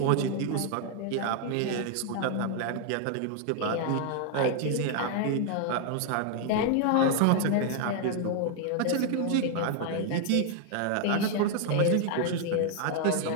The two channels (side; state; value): both; different; correlation 0.00